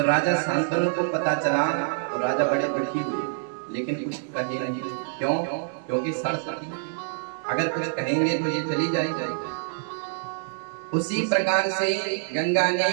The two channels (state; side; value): silent; left; 61 dB below the other